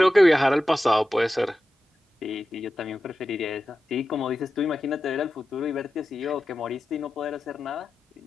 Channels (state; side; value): normal; both; correlation 0.92